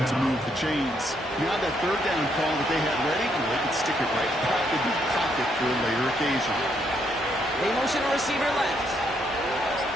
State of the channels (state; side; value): normal; both; correlation 0.74